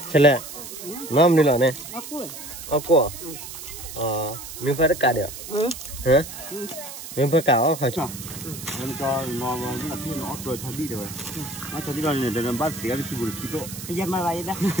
Chale, nam ni lah ne. Aku. Mình phải cắt được. Hả? Mình phải cắt không phải chứ? Mình cho nó là khi nó rồi cho đi rồi. Nó cho đi rồi này để làm bát xỉa đi chịu được đó. Bây giờ mà vậy đó.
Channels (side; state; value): right; noise; hiss, 11 dB below the sound